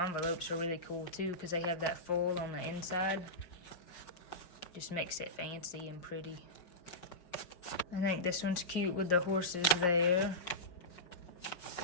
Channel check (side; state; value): right; late; 5.4 ms